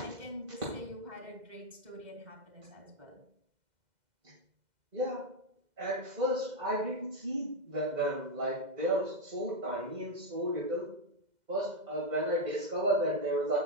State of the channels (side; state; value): left; late; 2.0 ms